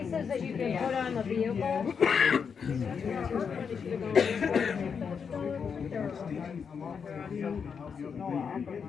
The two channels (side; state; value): right; quieter; 6.4 dB